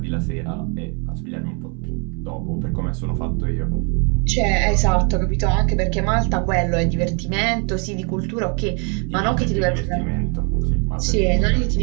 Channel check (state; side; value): quieter; left; 36.3 dB